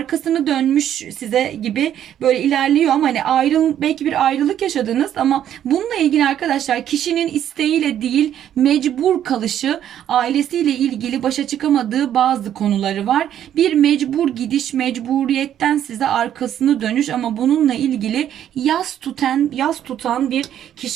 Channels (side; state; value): left; quieter; 10.5 dB